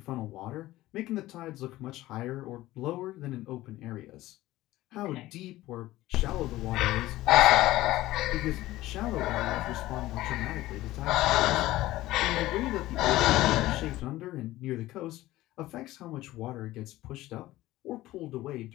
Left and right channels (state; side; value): quieter; right; 16.6 dB